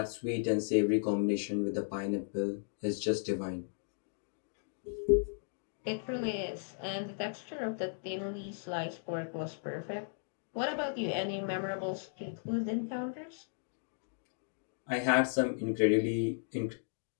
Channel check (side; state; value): right; silent; digital silence